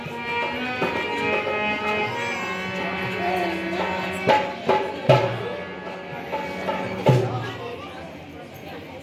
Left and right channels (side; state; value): both; identical; correlation 1.00